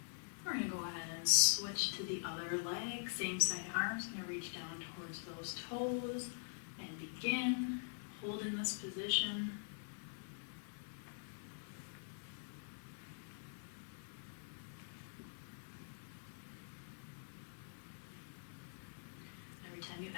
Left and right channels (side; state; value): right; silent; digital silence